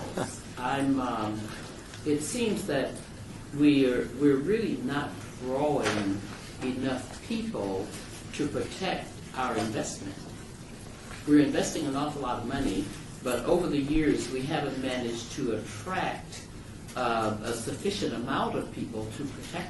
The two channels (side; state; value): both; identical; correlation 1.00